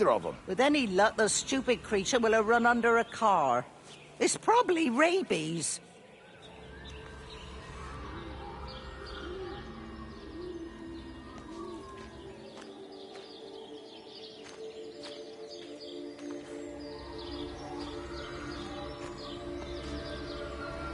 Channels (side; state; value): both; identical; correlation 1.00